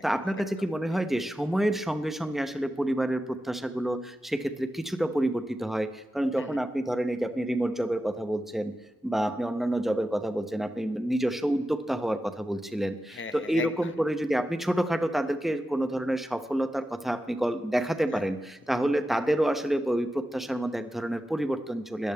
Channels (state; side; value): normal; both; correlation 0.91